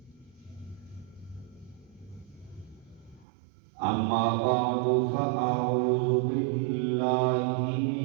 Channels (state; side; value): drops out; left; at 3.2 s